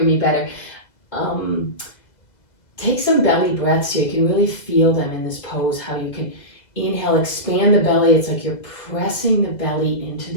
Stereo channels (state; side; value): late; right; 2.0 ms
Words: me better. Take some belly breaths here. You can really feel them in this pose, how you can inhale, expand the belly. It's like you're pressing the belly into